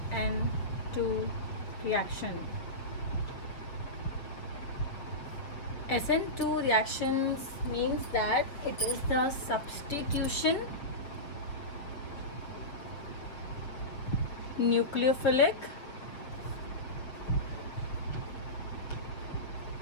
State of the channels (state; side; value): late; right; 7.0 ms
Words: reaction. SN2 reactions means that it is the substitution nucleophilic